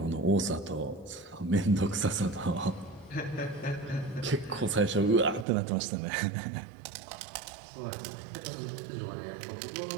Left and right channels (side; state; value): left; drops out; at 5.5 s